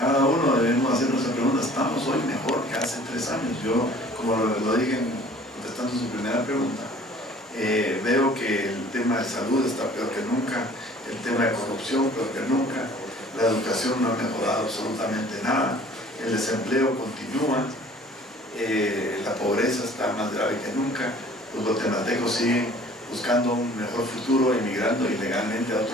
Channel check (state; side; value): normal; both; correlation 0.51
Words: uno debemos hacernos esa pregunta: ¿estamos hoy mejor que hace 3 años? Yo, como lo dije contestando su primera pregunta, veo que el tema de salud está peor que nunca, el tema de corrupción peor que nunca, la educación no ha mejorado absolutamente nada, el desempleo continúa, la pobreza está más grave que nunca, los guatemaltecos siguen buscando un mejor futuro, emigrando ilegalmente a